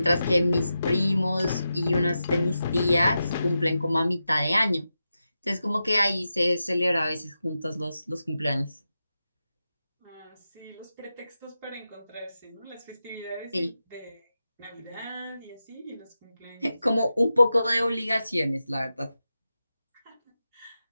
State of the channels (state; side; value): inverted; both; correlation -0.90